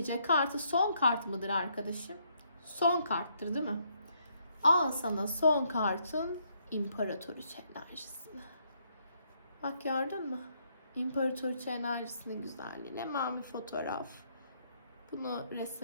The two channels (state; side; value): inverted; both; correlation -0.72